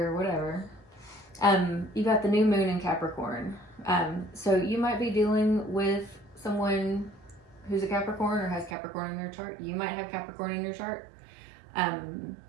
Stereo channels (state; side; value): drops out; left; at 8.8 s